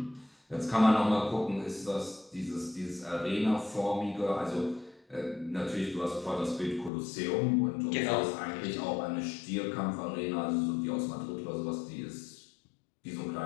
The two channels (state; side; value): drops out; right; at 6.9 s